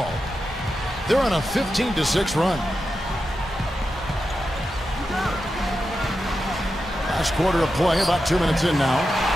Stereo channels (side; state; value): both; normal; correlation 0.89